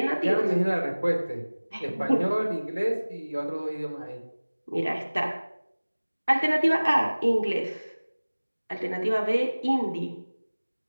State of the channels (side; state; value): both; inverted; correlation -1.00